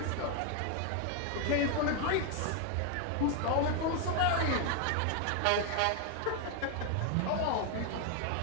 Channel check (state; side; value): different; both; correlation 0.01